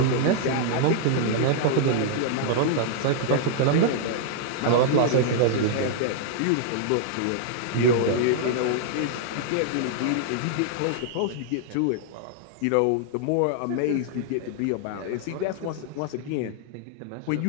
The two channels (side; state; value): both; different; correlation -0.01